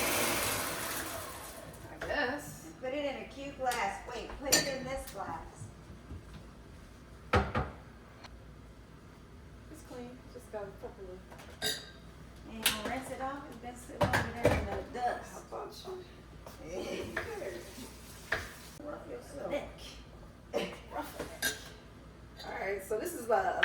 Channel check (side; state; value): both; identical; correlation 1.00